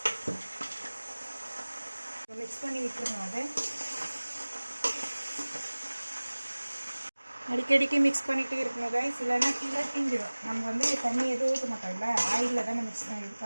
மிக்ஸ் பண்ணி விட்டுருங்க. அதை அடிக்கடிக்கு மிக்ஸ் பண்ணிகிட்டே இருக்கணும் கைஸ், இல்லைன்னா கீழே தீஞ்சிடும். நம்ம தண்ணி எதுவும் ஊற்ற மாட்டோம்ல, ஆயிலில் தான் மிக்ஸ் இது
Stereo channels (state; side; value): inverted; both; correlation -1.00